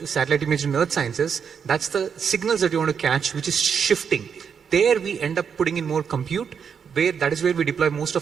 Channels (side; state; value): left; quieter; 6.9 dB